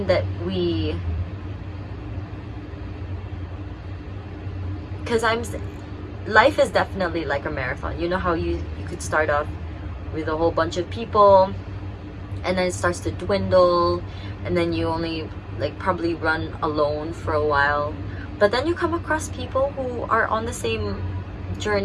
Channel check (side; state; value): both; identical; correlation 1.00